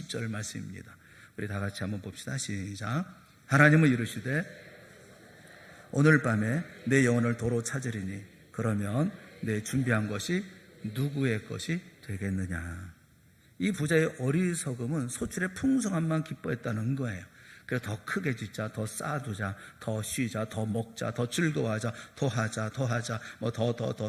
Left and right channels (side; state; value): both; identical; correlation 1.00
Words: 말씀입니다. 우리 다 같이 한번 봅시다. 시작. 하나님은 이르시되 오늘 밤에 내 영혼을 도로 찾으리니 그러면 내 준비한 것이 누구의 것이 되겠느냐. 이 부자의 어리석음은 소출의 풍성함만 기뻐했다는 거예요. 그래서 더 크게 짓자, 더 쌓아두자, 더 쉬자, 더 먹자, 더 즐거워하자, 더 하자,